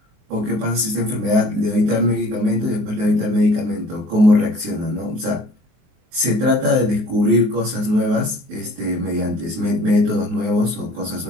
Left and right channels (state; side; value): late; left; 24 ms